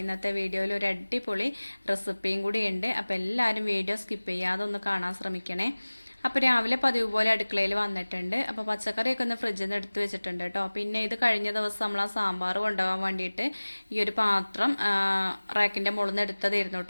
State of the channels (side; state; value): both; inverted; correlation -1.00